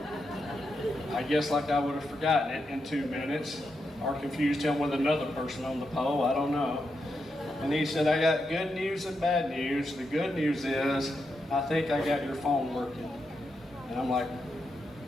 I guess like I would have forgotten it in 2 minutes or confused him with another person on the pole. I don't know. And he said, I got good news and bad news. The good news is I think I got your phone working. And I'm like,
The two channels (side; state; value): both; normal; correlation 0.84